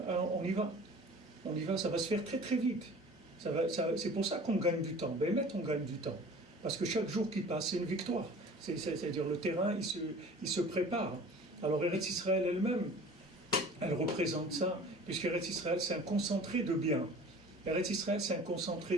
y va. On y va, ça va se faire très très vite. C'est pour ça qu'on gagne du temps. Ben, on gagne du temps. Parce que chaque jour qui passe, c'est une victoire. C'est-à-dire le terrain, il se prépare. Alors Eretz Israël elle-même, elle représente ça, puisque Eretz Israël, c'est un concentré de bien. Eretz Israël, c'est un concentré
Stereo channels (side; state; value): both; normal; correlation 0.44